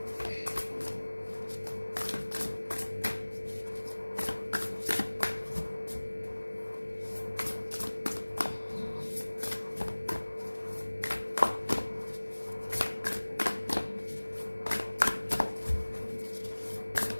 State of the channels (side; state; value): both; inverted; correlation -1.00